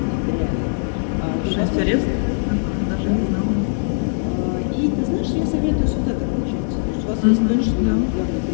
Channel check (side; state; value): right; silent; digital silence